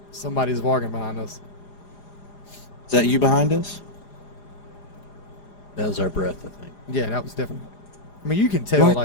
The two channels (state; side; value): late; right; 4.9 ms